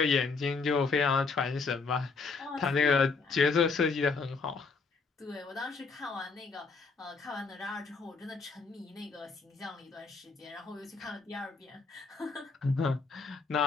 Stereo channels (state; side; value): quieter; right; 4.5 dB